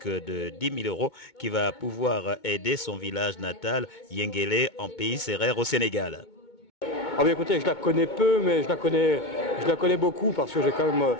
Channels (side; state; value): right; late; 2.2 ms